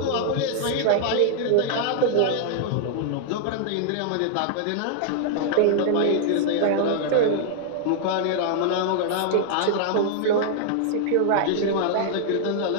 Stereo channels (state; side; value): different; both; correlation -0.01